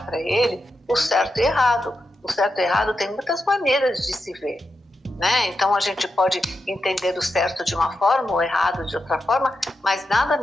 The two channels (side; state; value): both; normal; correlation 0.87